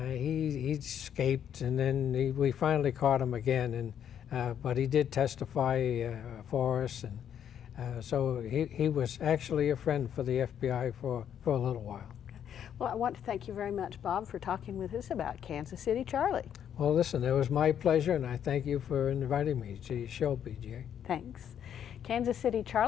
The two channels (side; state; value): right; quieter; 9.2 dB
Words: escaped, and then we finally caught him again. But he did testify for us, and so he was actually a friend for the FBI for a little while. Well, I want to thank you very much, Bob, for talking with us about Kansas City Charlie. Well, listen, it was my pleasure, and I thank you for inviting me to your show, BJ. Thanks. Kansas City